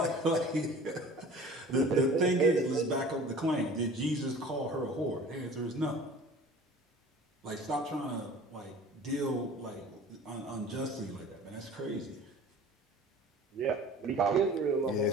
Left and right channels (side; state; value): both; normal; correlation 0.44